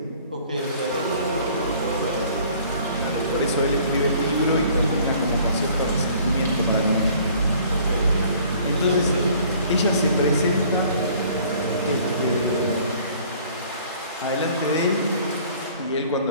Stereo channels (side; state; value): both; inverted; correlation -0.54